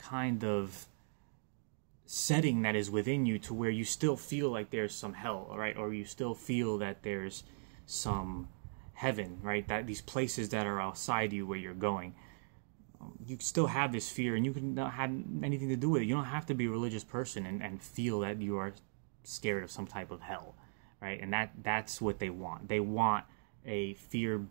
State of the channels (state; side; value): silent; left; digital silence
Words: of setting that is within you to where you still feel like there's some hell, right? Or you still feel that there's some heaven, right? That these places that are outside you where you're going. You still have this fear, and you can not have anything to do with it. You don't have to be a religious person and feel that you are scared of some type of hell, right? And that's what they want. They want a